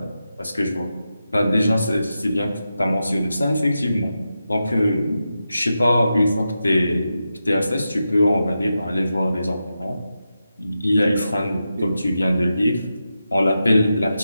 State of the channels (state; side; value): inverted; both; correlation -0.89